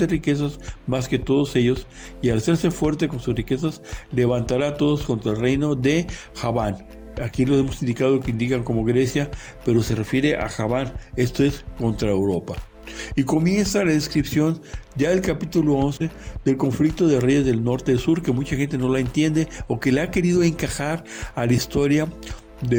riquezas más que todos ellos, y al hacerse fuerte con sus riquezas, levantará a todos contra el reino de Javán. Aquí lo hemos indicado que indican como Grecia, pero se refiere a Javán, esto es contra Europa. Y comienza la descripción ya del capítulo 11 del conflicto de reyes del norte y del sur, que mucha gente no la entiende o que le ha querido encajar a la historia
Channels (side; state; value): both; identical; correlation 1.00